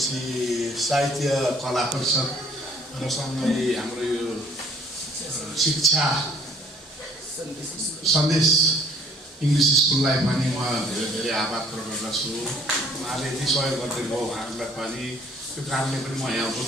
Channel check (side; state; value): both; normal; correlation 0.57